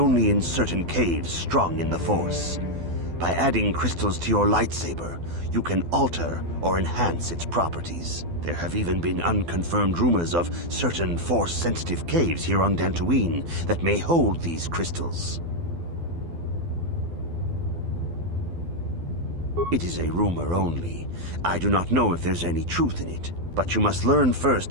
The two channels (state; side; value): late; left; 12 ms